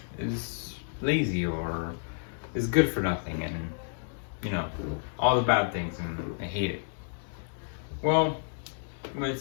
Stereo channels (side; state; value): right; silent; digital silence